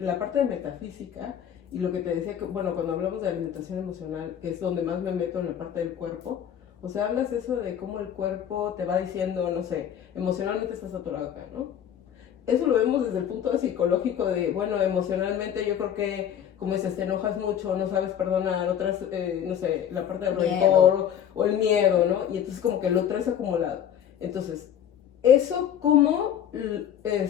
parte de metafísica y lo que te decía, que, bueno, cuando hablamos de alimentación emocional, que es donde más me meto en la parte del cuerpo, o sea, hablas de eso de cómo el cuerpo te va diciendo, no sé, emocionalmente estás saturado acá, ¿no? Eso lo vemos desde el punto psicológico de, bueno, emocionalmente yo creo que, como dices, te enojas mucho, no sabes perdonar, otras, no sé, la parte del rencor o el miedo, ¿no? Y entonces como que lo traes acumulado. Entonces, ¿eso cómo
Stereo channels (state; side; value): quieter; right; 9.4 dB